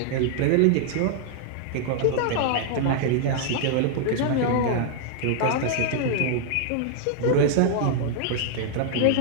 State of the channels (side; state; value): both; different; correlation 0.00